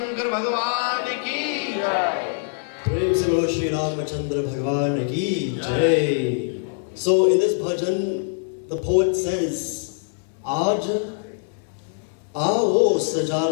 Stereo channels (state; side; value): silent; right; digital silence